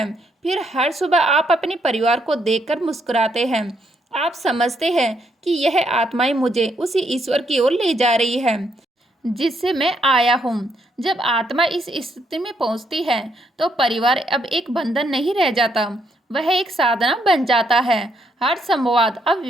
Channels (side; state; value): both; normal; correlation 0.74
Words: फिर हर सुबह आप अपने परिवार को देखकर मुस्कुराते हैं। आप समझते हैं कि यह आत्माएं मुझे उसी ईश्वर की ओर ले जा रही है जिससे मैं आया हूँ। जब आत्मा इस स्थिति में पहुँचती है तो परिवार अब एक बंधन नहीं रह जाता, वह एक साधना बन जाता है। हर संवाद अब